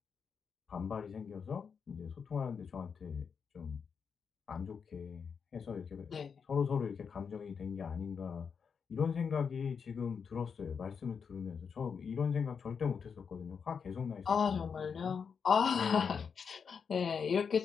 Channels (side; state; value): right; quieter; 6.3 dB